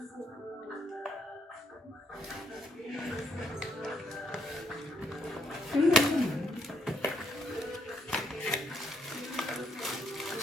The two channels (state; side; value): normal; both; correlation 0.71